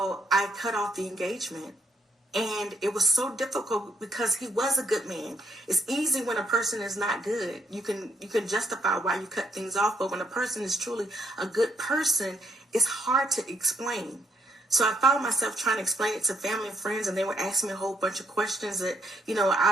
I cut off the engagement. And it was so difficult because he was a good man. It's easy when a person is not good. You can justify why you cut things off. But when a person is truly a good person, it's hard to explain. So I found myself trying to explain it to family and friends, and they were asking me a whole bunch of questions that,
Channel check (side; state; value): both; normal; correlation 0.73